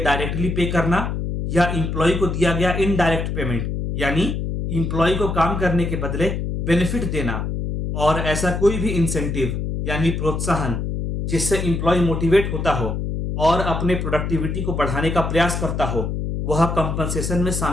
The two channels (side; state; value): left; noise; hum, 3 dB below the sound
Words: पे करना, या इंप्लॉय को दिया गया इनडायरेक्ट पेमेंट यानी इंप्लॉय को काम करने के बदले बेनिफिट देना, और ऐसा कोई भी इंसेंटिव यानी प्रोत्साहन जिससे इंप्लॉय मोटिवेट होता हो और अपने प्रोडक्टिविटी को बढ़ाने का प्रयास करता हो, वह कंपनसेशन में